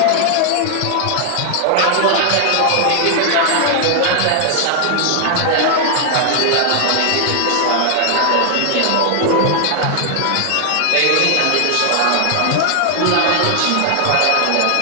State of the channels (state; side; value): different; both; correlation 0.00